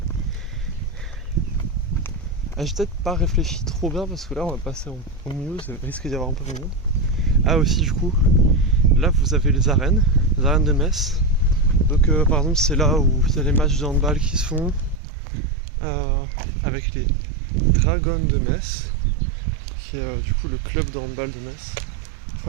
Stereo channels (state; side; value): drops out; left; at 15.0 s